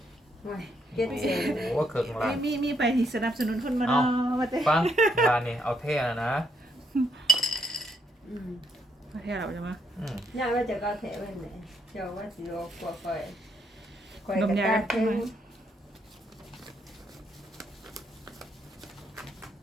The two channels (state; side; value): normal; both; correlation 0.74